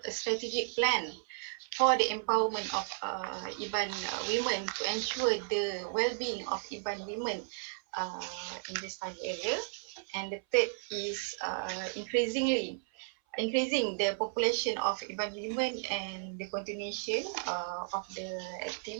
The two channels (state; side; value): silent; left; 55 dB below the other